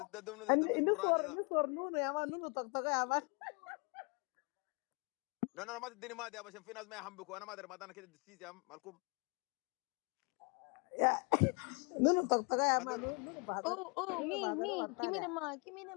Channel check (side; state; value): right; quieter; 34.1 dB